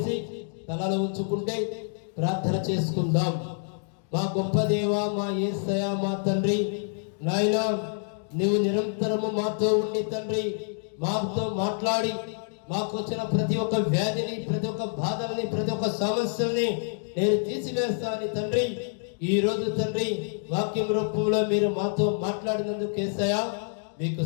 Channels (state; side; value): silent; right; digital silence